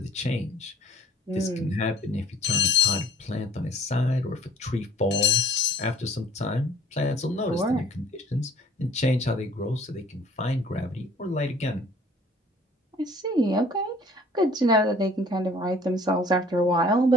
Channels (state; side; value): normal; both; correlation 0.53